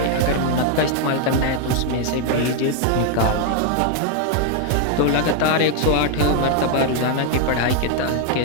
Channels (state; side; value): different; both; correlation 0.01